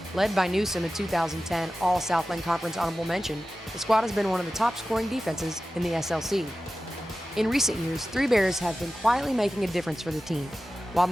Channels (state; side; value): normal; both; correlation 0.94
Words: Led by Newsom, a 2010 All-Southland Conference honorable mention, the squad has been one of the top scoring defenses in the SLC. In recent years, 3 Bears have been quietly making a difference for the team. While